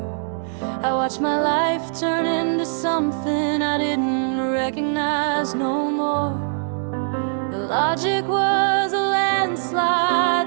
I watched my life turn into something I didn't recognize no more. The logic was a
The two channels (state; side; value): silent; left; digital silence